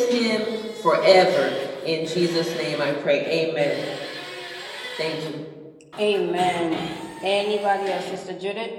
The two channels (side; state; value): both; identical; correlation 1.00